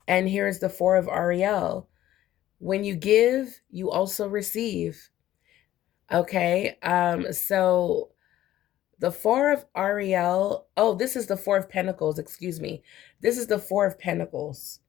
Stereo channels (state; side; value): quieter; right; 13.6 dB